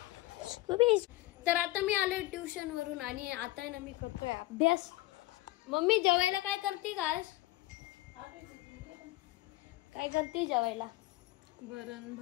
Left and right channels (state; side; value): quieter; right; 18.4 dB